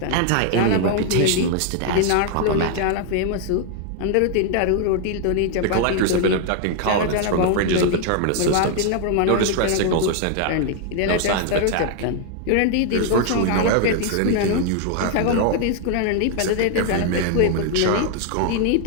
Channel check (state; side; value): different; both; correlation 0.00